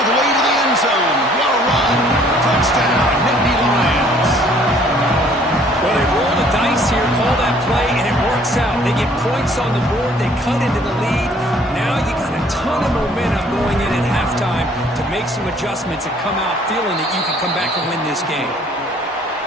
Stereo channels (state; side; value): normal; both; correlation 0.58